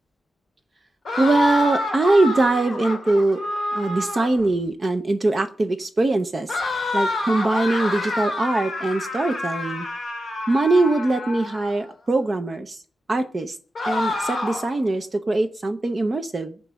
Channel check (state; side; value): normal; both; correlation 0.91